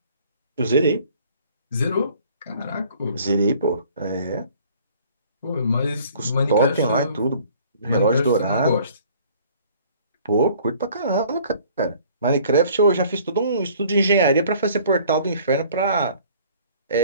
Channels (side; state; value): both; inverted; correlation -0.54